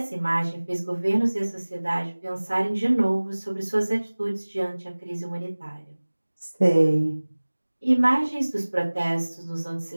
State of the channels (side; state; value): both; inverted; correlation -1.00